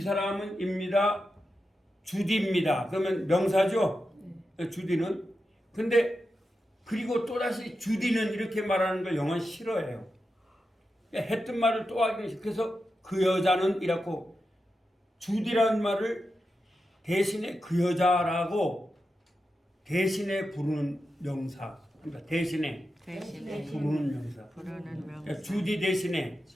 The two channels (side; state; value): both; normal; correlation 0.89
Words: 사람은 입니다. 주디입니다. 그러면 명사죠. 주디는. 근데 그리고 또다시 주디는 이렇게 말하는 걸 영어는 싫어해요. 했던 말을 또 하기는 싫어. 그래서 그 여자는 이라고 주디라는 말을 대신에 그 여자라고 대신에 부르는 명사. 그러니까 대신에 부르는 명사. 그러니까 주디 대신에